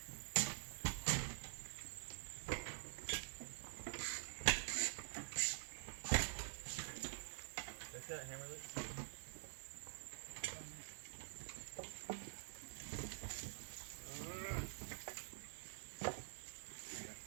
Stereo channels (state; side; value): silent; left; digital silence